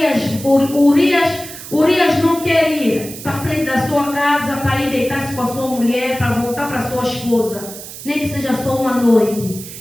não quer ir para frente da sua casa para ir deitar-se com a sua mulher, para voltar para sua esposa, nem que seja só uma noite.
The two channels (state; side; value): noise; right; hiss, 13 dB below the sound